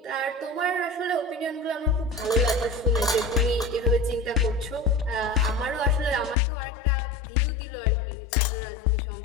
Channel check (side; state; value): right; drops out; at 6.4 s